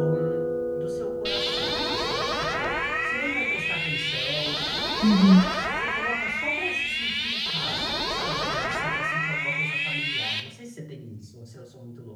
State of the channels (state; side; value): identical; both; correlation 1.00